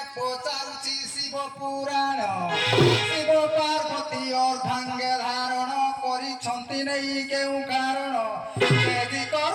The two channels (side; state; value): both; identical; correlation 1.00